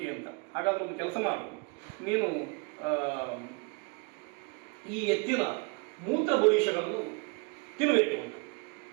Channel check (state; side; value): quieter; left; 32.1 dB